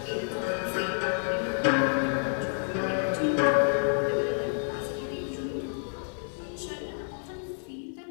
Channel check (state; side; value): silent; right; digital silence